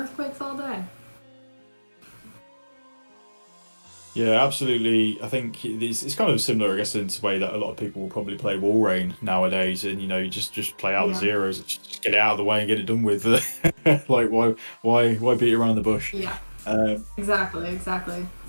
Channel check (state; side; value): inverted; both; correlation -1.00